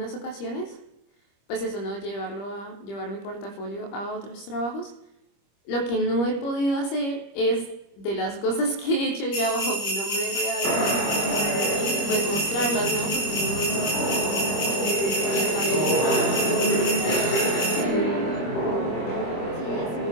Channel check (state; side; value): late; right; 25 ms